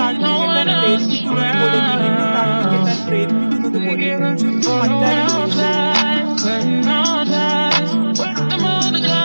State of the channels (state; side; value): inverted; both; correlation -1.00